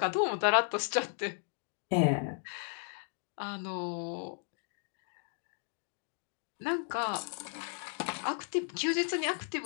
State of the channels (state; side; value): silent; right; 54 dB below the other